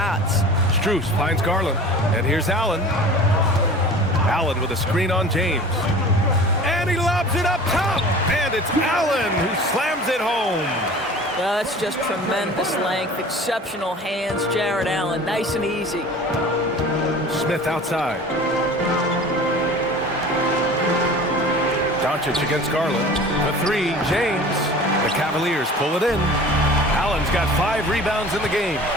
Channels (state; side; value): normal; both; correlation 0.41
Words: Strus finds Garland. And here's Allen. Allen with a screen on James. And he lobs it up top. And it's Allen who slams it home. That's just tremendous length, exceptional hands. Jared Allen, nice and easy. Smith outside. Doncic against Garland. The 3, James. The Cavaliers pull it in. Allen's got 5 rebounds in the game.